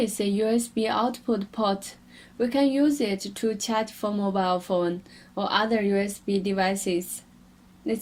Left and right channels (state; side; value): identical; both; correlation 1.00